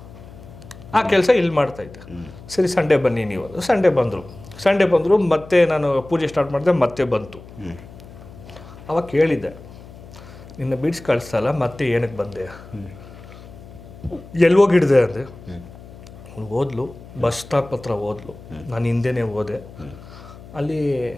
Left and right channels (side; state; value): left; noise; hum, 18 dB below the sound